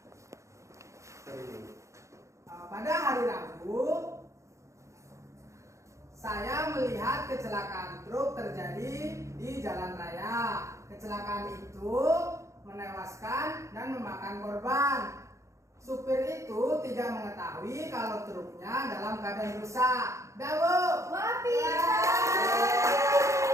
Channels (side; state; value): left; late; 0.15 ms